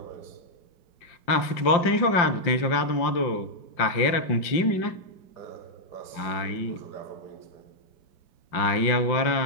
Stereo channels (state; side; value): late; right; 5.7 ms